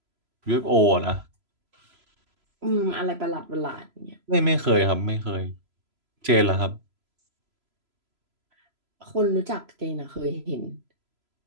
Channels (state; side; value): late; left; 3.0 ms